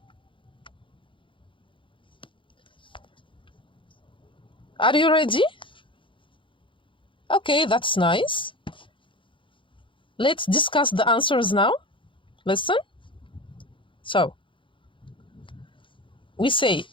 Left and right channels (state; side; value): late; right; 0.24 ms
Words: Are you ready? Okay, that's nice. Let's discuss the answers now. Listen. So, we say,